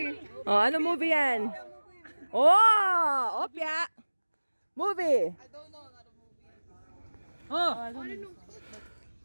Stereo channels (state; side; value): inverted; both; correlation -1.00